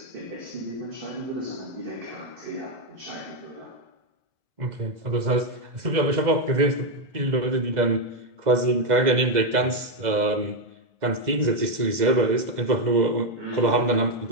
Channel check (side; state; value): left; late; 2.0 ms